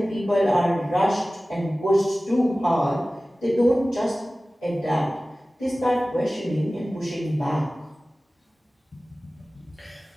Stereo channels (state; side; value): normal; both; correlation 0.97